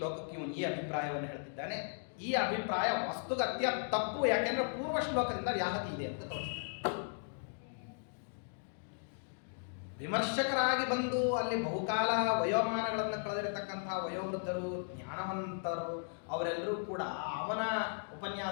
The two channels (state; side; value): silent; right; digital silence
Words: ಇವನು ಈ ಅಭಿಪ್ರಾಯವನ್ನು ಹೇಳ್ತಿದ್ದಾನೆ. ಈ ಅಭಿಪ್ರಾಯ ವಸ್ತುಗತ್ಯ ತಪ್ಪು, ಯಾಕೆಂದ್ರೆ ಪೂರ್ವ ಶ್ಲೋಕದಿಂದ ವ್ಯಾಹತಿ ಇದೆ ಅಂತ ತೋರಿಸ್ತಾನೆ. ವಿಮರ್ಶಕರಾಗಿ ಬಂದು ಅಲ್ಲಿ ಬಹುಕಾಲ ವಯೋಮಾನಗಳನ್ನು ಕಳೆದಿರತಕ್ಕಂತಹ ವಯೋವೃದ್ಧರು, ಜ್ಞಾನವಂತರು, ಅವರೆಲ್ಲರೂ ಕೂಡ ಅವನ